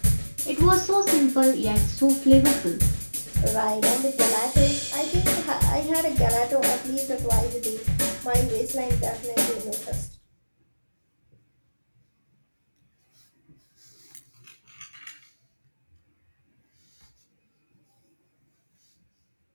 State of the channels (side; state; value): both; inverted; correlation -1.00